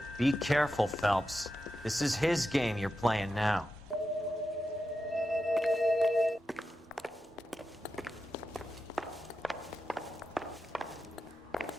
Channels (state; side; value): normal; both; correlation 0.90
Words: Be careful, Phelps. This is his game you're playing now.